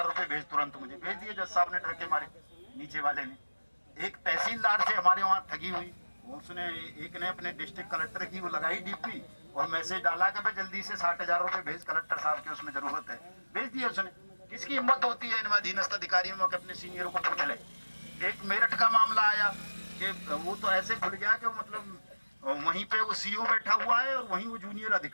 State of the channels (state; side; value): inverted; both; correlation -1.00